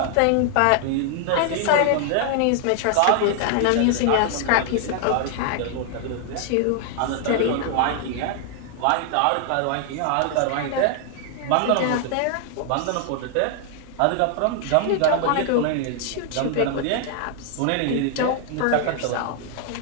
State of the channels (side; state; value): both; different; correlation 0.00